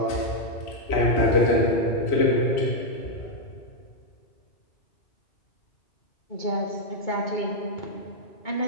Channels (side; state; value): right; late; 2.2 ms